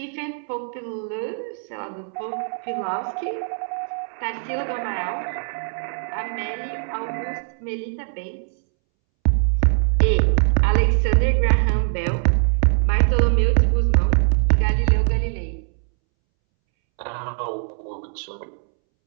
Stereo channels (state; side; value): silent; left; 64 dB below the other